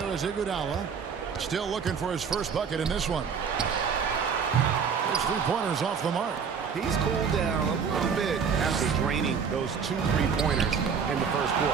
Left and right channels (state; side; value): quieter; left; 6.4 dB